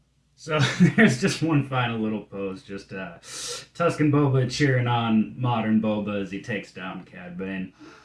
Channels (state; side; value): identical; both; correlation 1.00